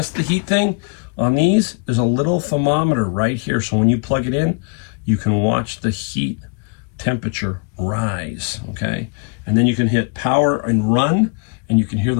the heat thing? On these, there's a little thermometer right here. So when you plug it in, you can watch the heat temperature rise, okay? And then you can hit power and run, and you can hear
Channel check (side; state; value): right; quieter; 35.5 dB